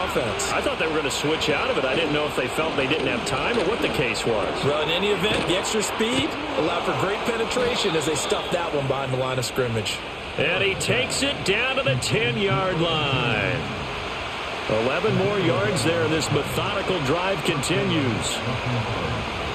offense. I thought they were going to switch out of it. I didn't know if they felt they didn't have time or what the case was. Well, in any event, the extra speed allowed for great penetration as they stuffed that one behind the line of scrimmage. And he takes it down to the 10-yard line. 11 more yards there. This methodical drive continues.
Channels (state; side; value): identical; both; correlation 1.00